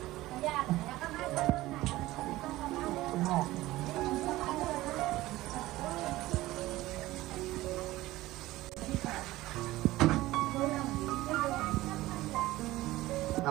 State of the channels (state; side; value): quieter; left; 17.4 dB